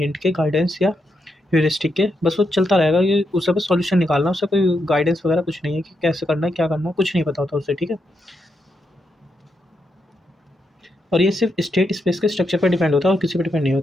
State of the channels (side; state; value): both; normal; correlation 0.83